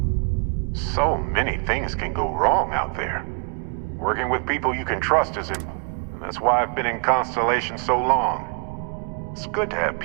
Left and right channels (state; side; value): quieter; left; 39.0 dB